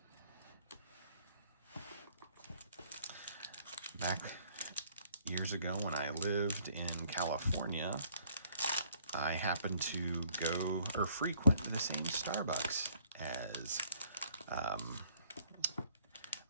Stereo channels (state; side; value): inverted; both; correlation -0.62